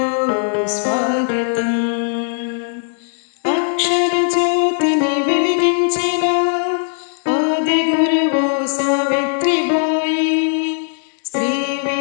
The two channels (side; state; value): right; silent; digital silence